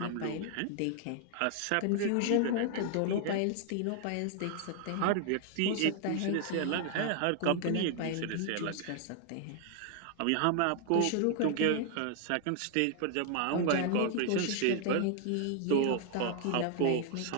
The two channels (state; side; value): different; both; correlation 0.00